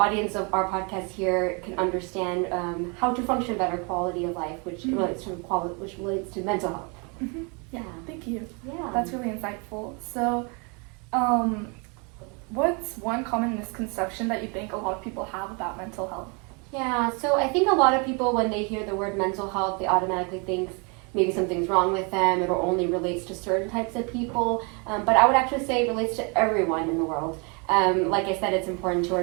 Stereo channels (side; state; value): left; quieter; 33.2 dB